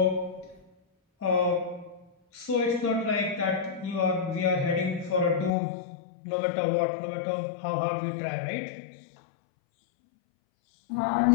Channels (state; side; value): drops out; right; at 5.5 s